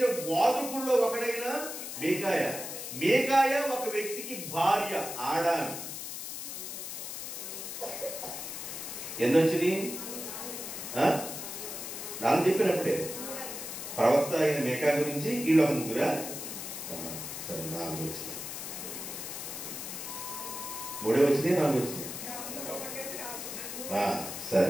బోధకుల్లో ఒకడైన మీకాయ. మీకాయ ఒక వ్యక్తికి భార్య, ఆడామి. ఎన్నొచ్చినాయి? నాకు చెప్పినప్పుడే ప్రవక్త అయిన మేకా గురించి వీళ్ళు ఒక ముగ్గురా? సరే, 4 వచ్చినాయి. 3 వచ్చినాయి, 4 వచ్చినాయి.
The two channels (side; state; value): left; noise; hiss, 7 dB below the sound